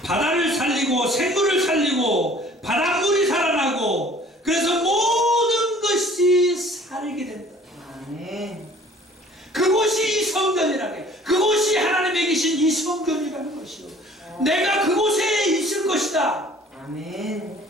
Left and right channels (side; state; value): both; normal; correlation 0.52